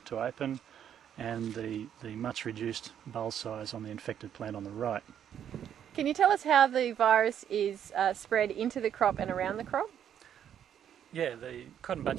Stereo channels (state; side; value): quieter; left; 9.4 dB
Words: open, and the much reduced bulb size on the infected plant on the right. Can you tell us how the virus is spread into the crop and around the crop? Yeah, the cotton